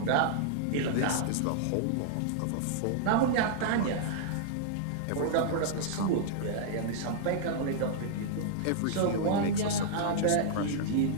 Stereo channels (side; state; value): both; different; correlation -0.02